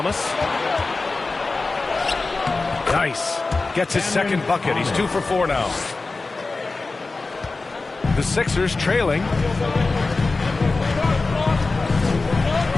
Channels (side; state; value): right; quieter; 3.6 dB